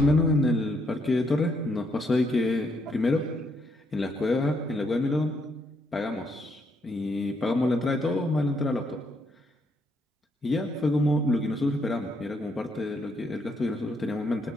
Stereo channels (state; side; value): normal; both; correlation 0.74